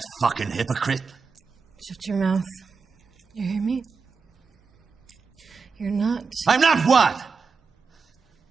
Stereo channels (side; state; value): left; quieter; 5.0 dB